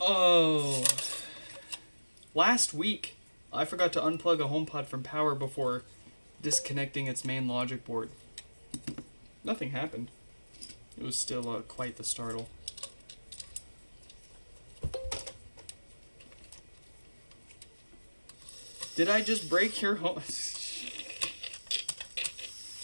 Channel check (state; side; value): inverted; both; correlation -1.00